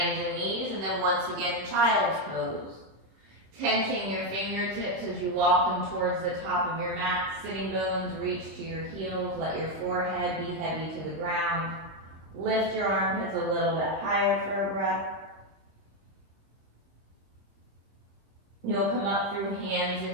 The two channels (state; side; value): late; left; 26 ms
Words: and knees, and then once again, child's pose. Tenting your fingertips as you walk them towards the top of your mat. Sitting bones reach to your heels. Let your forehead be heavy to the ground. Lift your armpits a little bit higher for a breath. You'll come up through hands